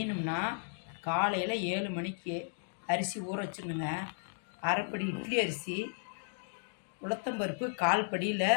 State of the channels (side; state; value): right; silent; digital silence